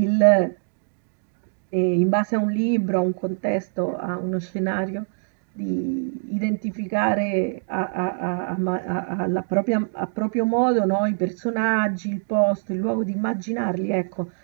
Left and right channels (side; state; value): left; silent; digital silence